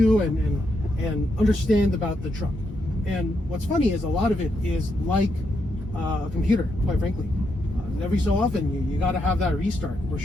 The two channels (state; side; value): normal; both; correlation 0.80